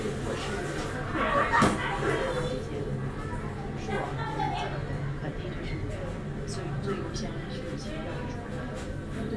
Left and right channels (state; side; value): identical; both; correlation 1.00